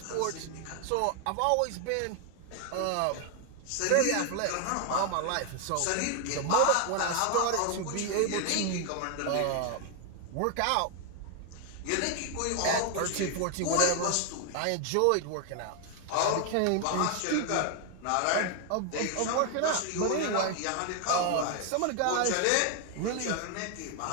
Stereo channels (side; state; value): both; different; correlation 0.00